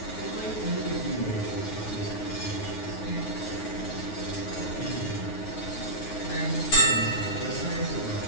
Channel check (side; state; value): right; late; 9.5 ms